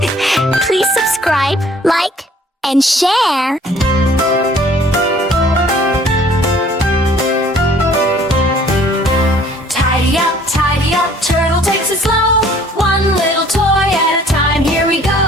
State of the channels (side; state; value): both; normal; correlation 0.56